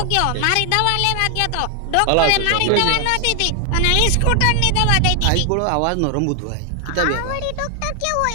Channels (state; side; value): different; both; correlation 0.00